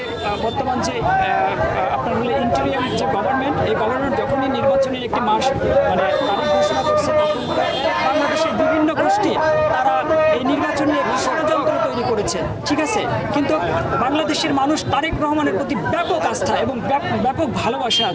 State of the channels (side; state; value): both; identical; correlation 1.00